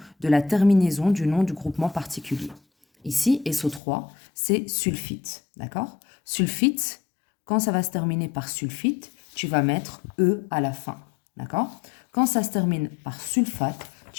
de la terminaison du nom du groupement particulier. Ici, SO3, c'est sulfite, d'accord? Sulfite, quand ça va se terminer par sulfite, tu vas mettre E à la fin, d'accord? Quand ça se termine par sulfate,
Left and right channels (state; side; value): drops out; right; at 3.8 s